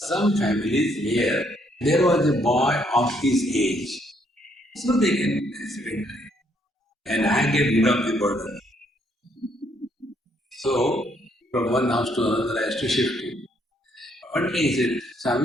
families where there was a boy of his age. So they can spend time. And I get rid of the burden. So from one house to another I used to shift him. One day he said,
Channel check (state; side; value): normal; both; correlation 0.70